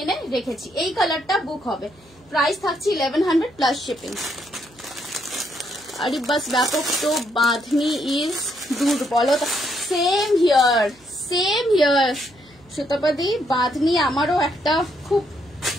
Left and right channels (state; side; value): noise; right; hum, 28 dB below the sound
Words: রেখেছি। এই কালারটা বুক হবে, প্রাইস থাকছে 1100 প্লাস শিপিং। আরে বাস ব্যাপক তো বাঁধনি ইজ দুর্বলতা। সেম হিয়ার সুতাপাদি, বাঁধনি আমারও একটা খুব